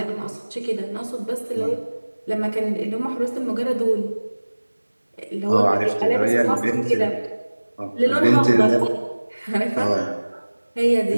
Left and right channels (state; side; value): inverted; both; correlation -1.00